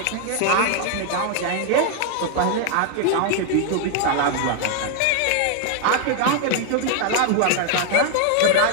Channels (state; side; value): different; both; correlation 0.00